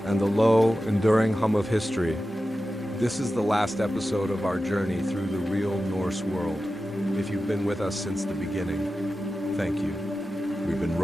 the low, enduring hum of history. This is the last episode of our journey through the real Norse world. If you've been with us since the beginning, thank you. We've been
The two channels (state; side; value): normal; both; correlation 0.93